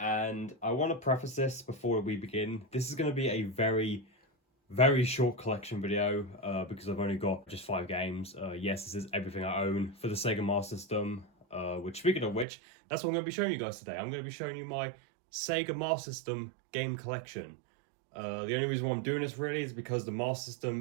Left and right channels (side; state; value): left; drops out; at 12.5 s